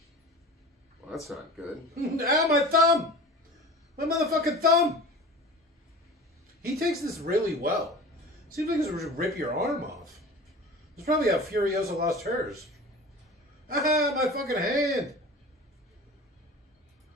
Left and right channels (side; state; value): both; normal; correlation 0.36